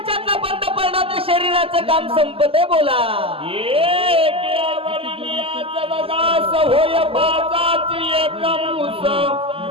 बंद पडला तर शरीराचं काम संपत आहे. बोला होय बाजाच एक मूस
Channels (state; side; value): late; left; 0.27 ms